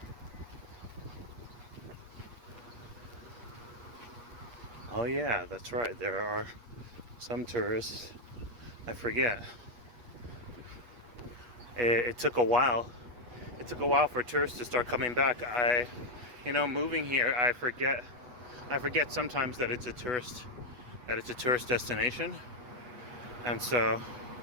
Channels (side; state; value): left; late; 8.4 ms